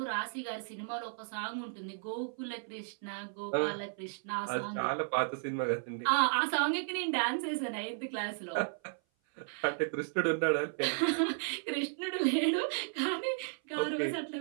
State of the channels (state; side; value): silent; left; 55 dB below the other